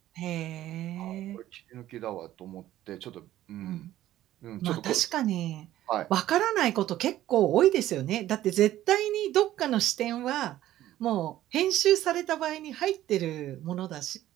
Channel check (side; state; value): left; quieter; 13.7 dB